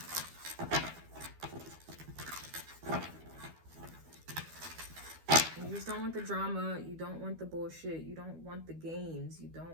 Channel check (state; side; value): late; left; 12 ms